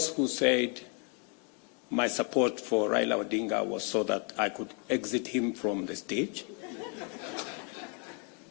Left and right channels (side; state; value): right; quieter; 37.8 dB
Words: who said my support for Raila Odinga was so that I could exit him from the stage.